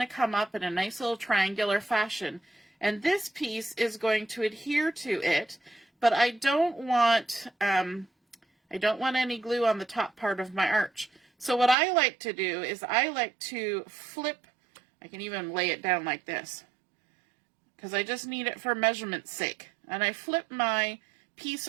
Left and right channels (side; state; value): left; drops out; at 11.8 s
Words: come up in a nice little triangular fashion. And this piece is going to adhere to it, but I don't want any glue on the top part of my arch. So what I like to do is I like to flip, I can even lay it down like this, because I just need it for measurement's sake. And I flip my piece